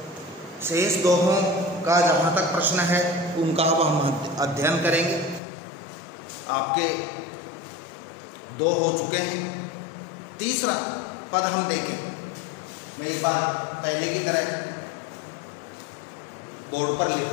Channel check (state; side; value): drops out; right; at 5.4 s